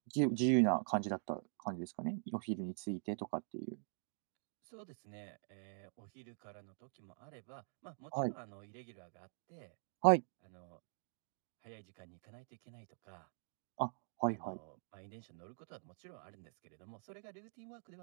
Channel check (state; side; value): silent; left; digital silence